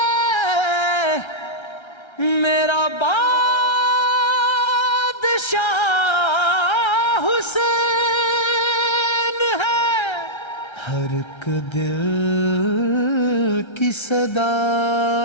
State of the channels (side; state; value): right; late; 1.3 ms